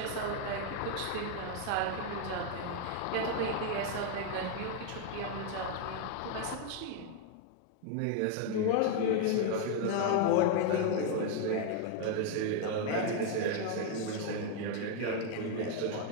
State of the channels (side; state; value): both; different; correlation 0.00